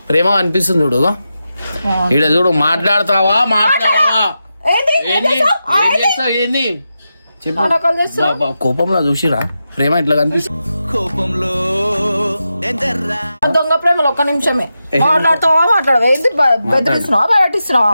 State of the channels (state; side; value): inverted; both; correlation -0.89